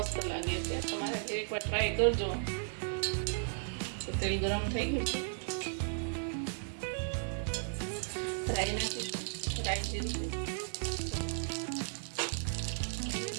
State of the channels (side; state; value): left; silent; digital silence